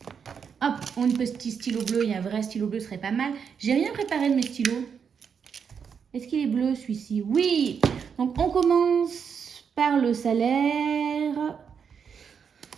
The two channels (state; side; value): quieter; left; 6.8 dB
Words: hop, on a un petit stylo bleu. Il y a un vrai stylo bleu, ce serait pas mal. J'ai rien préparé de mes stylos. Est-ce qu'il est bleu celui-ci? Oui. Donc, on commence par le salaire.